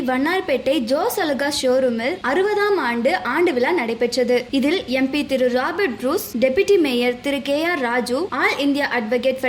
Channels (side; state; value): both; identical; correlation 1.00